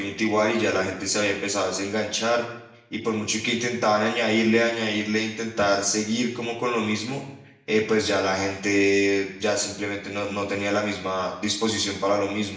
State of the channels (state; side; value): identical; both; correlation 1.00